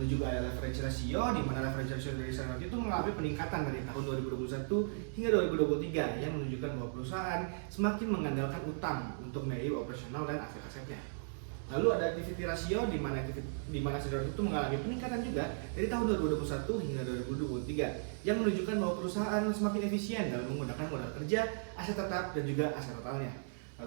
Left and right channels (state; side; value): silent; left; 54 dB below the other